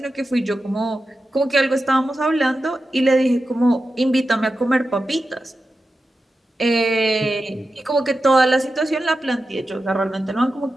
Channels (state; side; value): normal; both; correlation 0.91